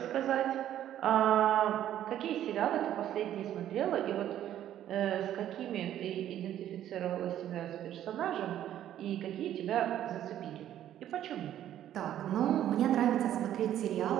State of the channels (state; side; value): quieter; left; 11.6 dB